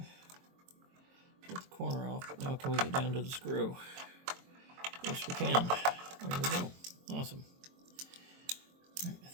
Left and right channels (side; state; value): left; late; 22 ms